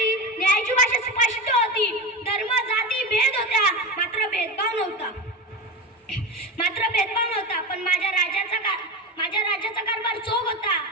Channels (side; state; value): both; normal; correlation 0.22